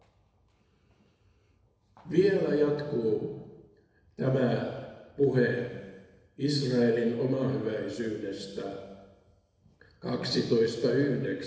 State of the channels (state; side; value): identical; both; correlation 1.00